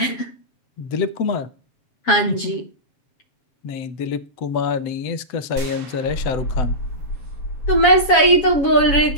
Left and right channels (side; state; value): right; late; 7.3 ms